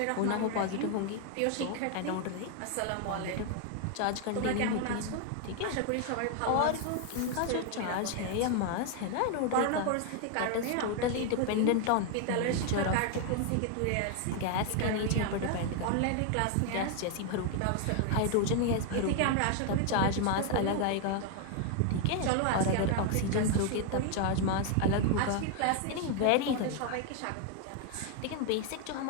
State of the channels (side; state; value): both; different; correlation 0.00